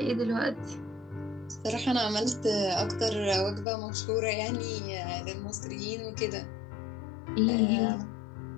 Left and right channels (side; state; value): right; drops out; at 3.7 s